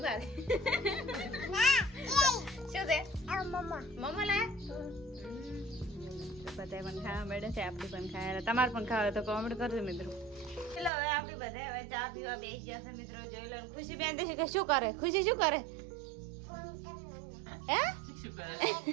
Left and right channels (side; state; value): left; drops out; at 10.9 s